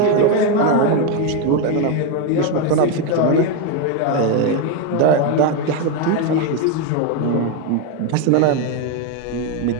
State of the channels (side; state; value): both; different; correlation 0.02